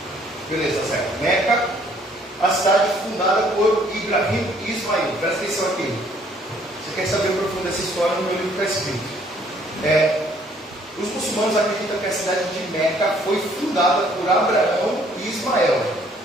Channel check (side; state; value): both; normal; correlation 0.62